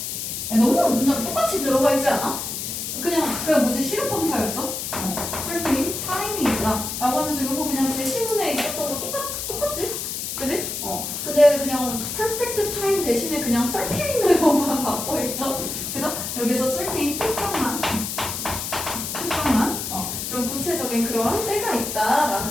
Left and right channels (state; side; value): noise; left; hiss, 5 dB below the sound